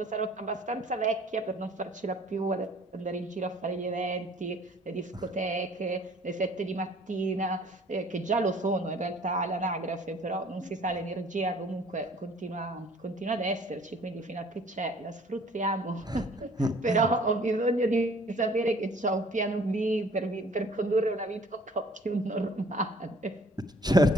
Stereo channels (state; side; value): normal; both; correlation 0.55